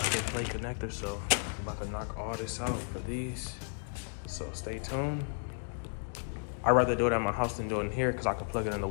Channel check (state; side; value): silent; right; 55 dB below the other